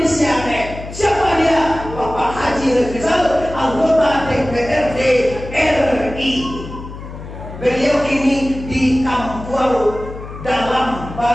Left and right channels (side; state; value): left; noise; hum, 12 dB below the sound